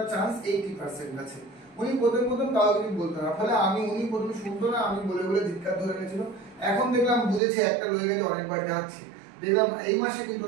চান্স 80% আছে। উনি প্রথম কাউকে কিছু বলতো না, ফলে উনি প্রথম শুনতো না, আমি বলে বলে ধিক্কার ধরে গেছিল। এখন দেখলাম বুঝেছে, একটা লয়ে গেছে, অনেকবার যাচ্ছে, দেখলাম এই মাসে কিন্তু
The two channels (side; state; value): left; drops out; at 7.4 s